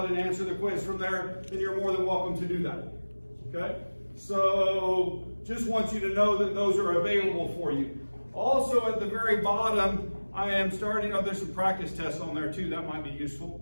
and answer the quiz from there, then you're more than welcome to do that. Okay? So just want you to know that those are available for you. Also at the very bottom, I am starting, there's some practice tests on there too, that might be useful.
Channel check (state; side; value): inverted; both; correlation -1.00